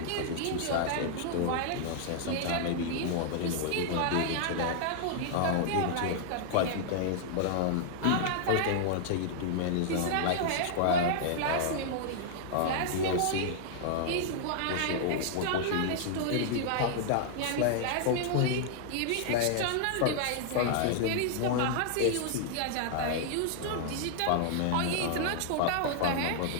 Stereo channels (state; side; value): different; both; correlation -0.01